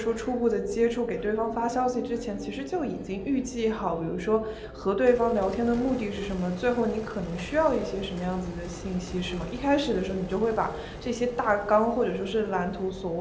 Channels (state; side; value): identical; both; correlation 1.00